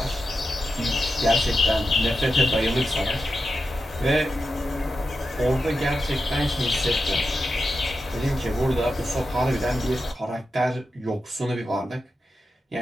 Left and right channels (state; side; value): normal; both; correlation 0.89